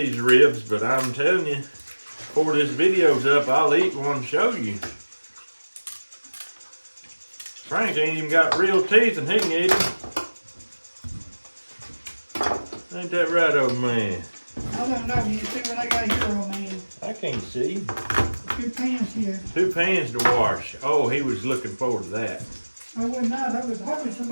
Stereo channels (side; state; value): both; inverted; correlation -1.00